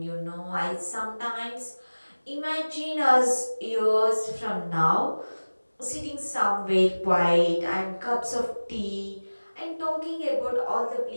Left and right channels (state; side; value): inverted; both; correlation -1.00